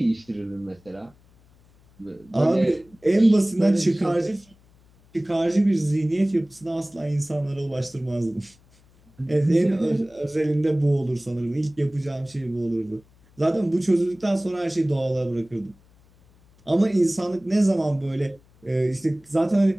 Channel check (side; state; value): left; noise; hum, 30 dB below the sound